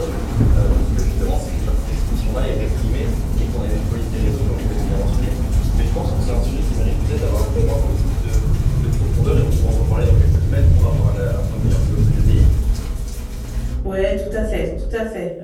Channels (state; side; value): identical; both; correlation 1.00